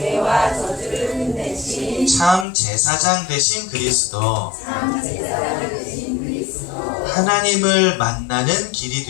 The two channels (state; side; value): drops out; right; at 2.5 s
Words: 참 제사장 되신 그리스도, 하나님을 만나는 길이